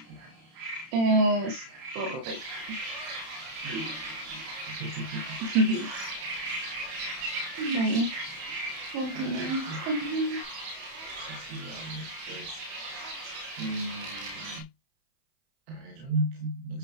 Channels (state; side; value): late; left; 31 ms